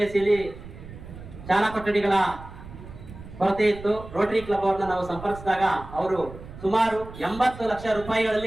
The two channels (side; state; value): right; noise; rumble, 15 dB below the sound